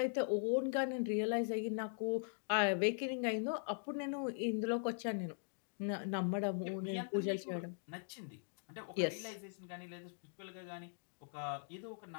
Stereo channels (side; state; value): right; silent; digital silence